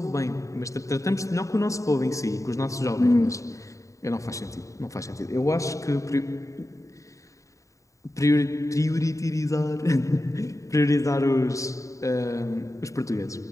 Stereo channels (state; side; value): late; right; 0.16 ms